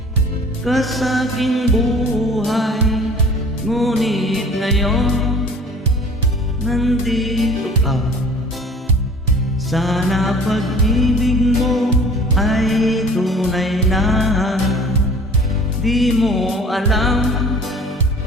ka sa aking buhay, ngunit ngayon nandito ka. Sana pag-ibig mo ay tunay na. Di mo alam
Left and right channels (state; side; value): normal; both; correlation 0.47